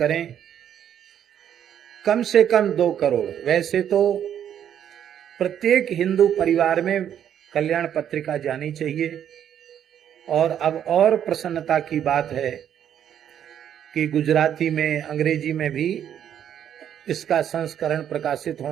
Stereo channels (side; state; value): left; quieter; 9.6 dB